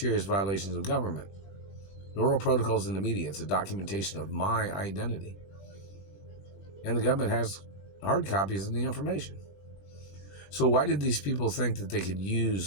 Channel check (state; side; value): late; right; 20 ms